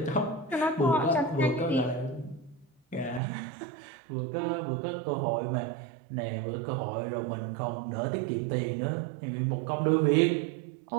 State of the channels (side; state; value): left; drops out; at 3.2 s